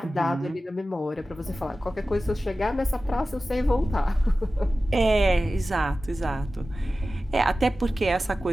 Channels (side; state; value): both; normal; correlation 0.95